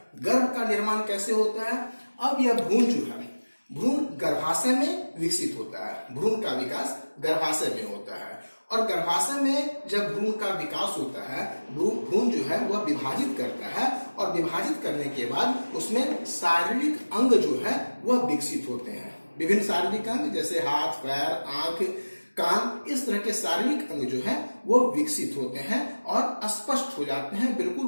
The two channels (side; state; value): both; inverted; correlation -1.00